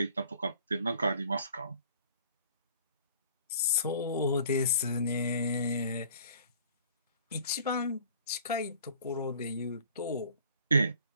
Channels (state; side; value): inverted; both; correlation -0.51